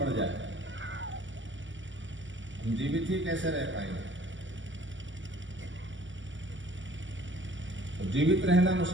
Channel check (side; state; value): left; late; 0.55 ms